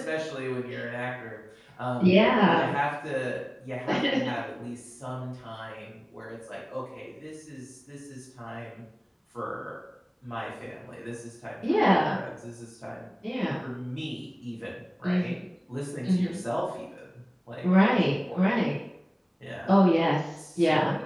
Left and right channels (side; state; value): both; identical; correlation 1.00